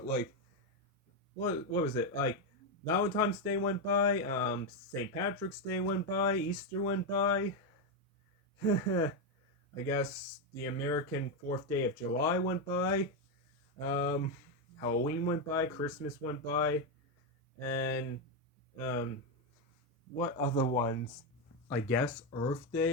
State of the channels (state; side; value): normal; both; correlation 0.06